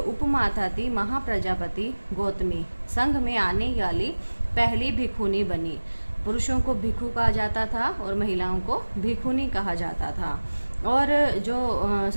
उपमाता थी महाप्रजापति गौतमी संघ में आने वाली पहली भिक्षुनी बनी। पुरुषों को भिक्षु कहा जाता था और महिलाओं को भिक्षुनी कहा जाता था। और जो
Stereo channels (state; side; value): inverted; both; correlation -1.00